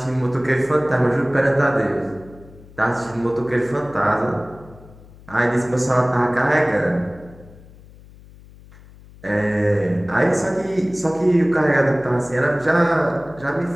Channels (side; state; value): left; noise; hum, 22 dB below the sound